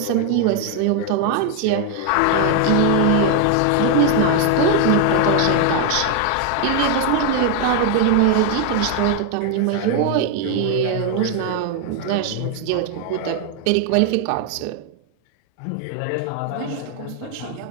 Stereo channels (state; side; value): different; both; correlation 0.01